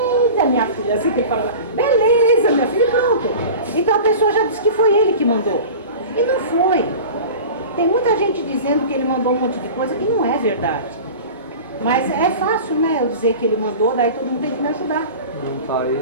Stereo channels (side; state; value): both; inverted; correlation -0.35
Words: minha filha, assim que ele fala, beleza, minha filha, e pronto. Então a pessoa já disse que foi ele que mandou. E não foi. Tem muita gente dizendo que ele mandou um monte de coisa que não é verdade. Mas é fácil, né, eu dizer que ele mandou, daí todo mundo tem que me ajudar. Não tá aí.